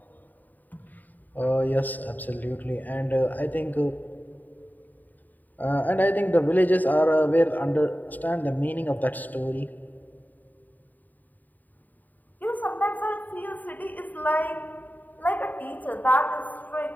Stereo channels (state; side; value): late; right; 0.085 ms